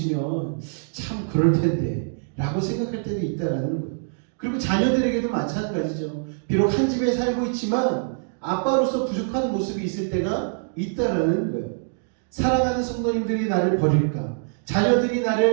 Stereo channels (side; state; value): left; silent; digital silence